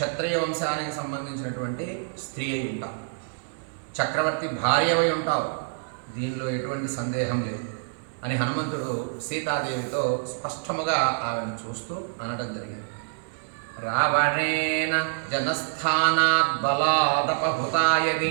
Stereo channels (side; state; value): left; silent; digital silence